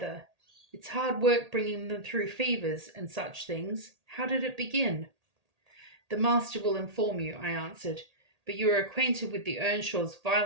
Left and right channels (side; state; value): left; late; 1.8 ms